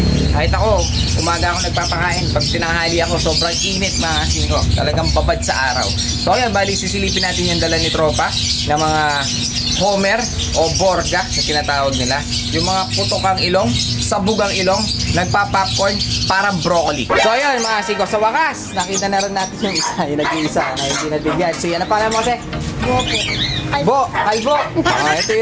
Kahit ako, umaga ako nagpapakain. Pag tinanghali ako, sobrang init, mga singko. Talagang babad sa araw. So, ayan, bali, sisilipin natin yung dala ni tropa na mga Homer o Borga na tinatawag nila. Yung mga putokang ilong, sabugang ilong, nagpa-popcorn, parang broccoli. So ayun mga siko, sa wakas, nakita na rin natin yung isa, yung nag-iisa na hindi nabigyan. Si ano pala mo kasi? Bo. Kalbo. Ito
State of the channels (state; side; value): identical; both; correlation 1.00